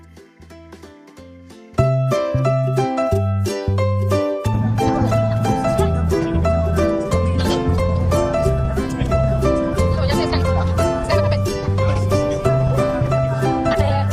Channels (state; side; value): identical; both; correlation 1.00